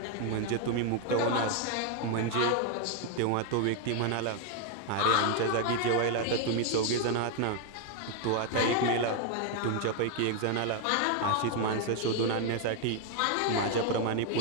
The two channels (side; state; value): both; different; correlation 0.01